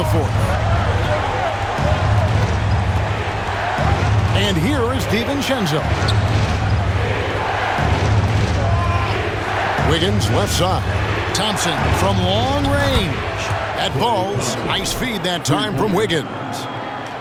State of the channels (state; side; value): identical; both; correlation 1.00